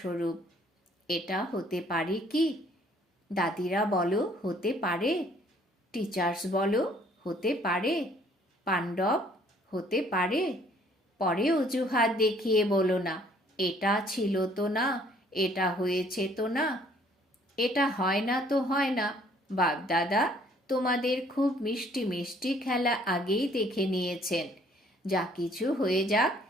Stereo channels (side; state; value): both; normal; correlation 0.60